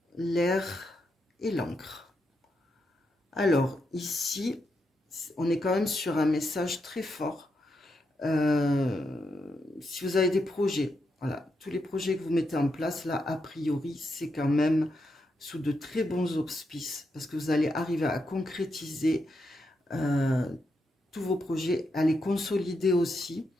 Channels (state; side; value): normal; both; correlation 0.83